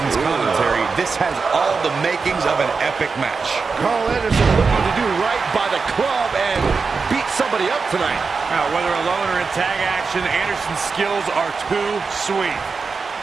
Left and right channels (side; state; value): left; quieter; 4.8 dB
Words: commentary, this has all the makings of an epic match. Karl Anderson looking to do right by the club and beat somebody up tonight. Now, whether alone or in tag action, Anderson's skills are too sweet.